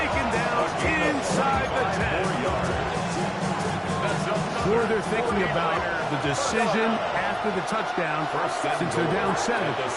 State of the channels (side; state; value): both; identical; correlation 1.00